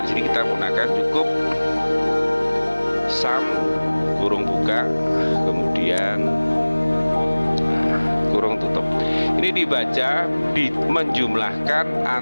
sini kita menggunakan cukup sum kurung buka, kemudian kurung tutup. Ini dibaca menjumlahkan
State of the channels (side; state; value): both; inverted; correlation -1.00